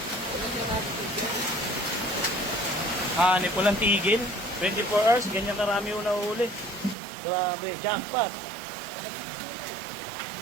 Hanip ko lang tigil. 24 hours, ganyan karami yung nahuli. Grabe, jackpot.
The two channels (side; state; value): left; drops out; at 7.0 s